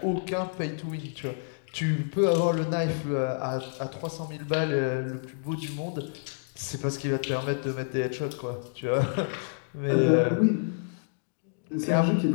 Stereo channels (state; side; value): silent; right; digital silence